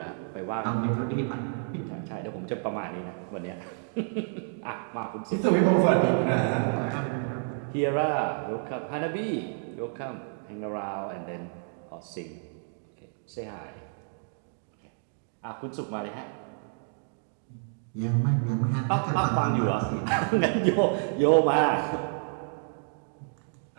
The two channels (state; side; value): silent; left; 58 dB below the other